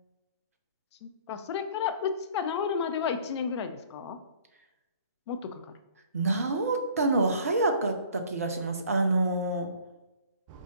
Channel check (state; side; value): inverted; both; correlation -0.51